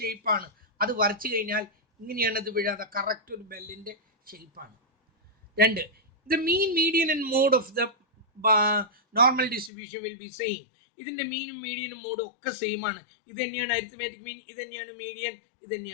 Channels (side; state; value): right; drops out; at 9.7 s